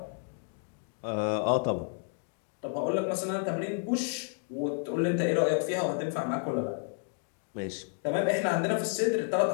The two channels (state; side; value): silent; right; 55 dB below the other